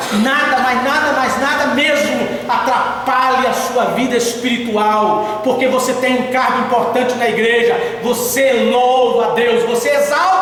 mas nada mesmo atrapalhe a sua vida espiritual, porque você tem um cargo importante na igreja. Você louva a Deus, você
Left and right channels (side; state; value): both; identical; correlation 1.00